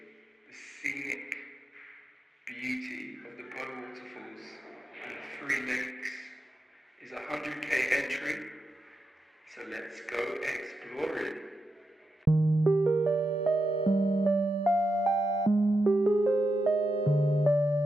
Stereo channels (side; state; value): both; normal; correlation 0.86